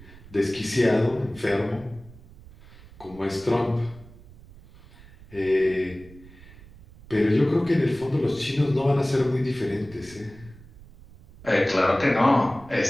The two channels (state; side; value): noise; right; rumble, 21 dB below the sound